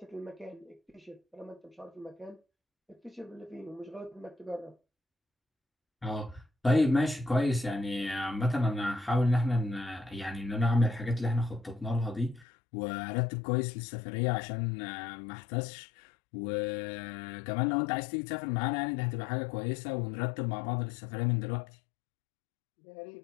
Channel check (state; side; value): drops out; right; at 12.5 s